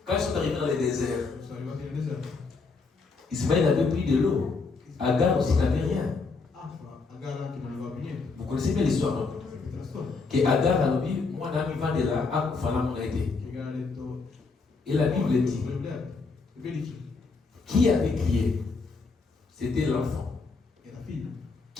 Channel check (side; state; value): right; quieter; 4.3 dB